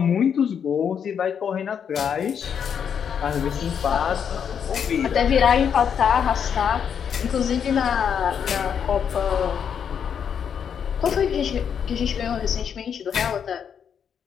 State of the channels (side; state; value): right; quieter; 7.7 dB